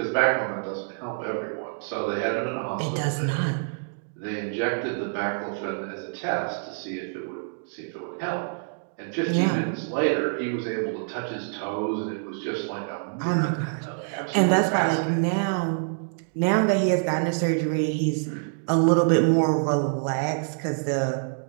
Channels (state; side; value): silent; left; digital silence